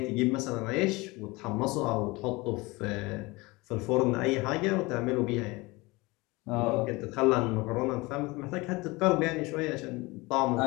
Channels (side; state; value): right; quieter; 23.2 dB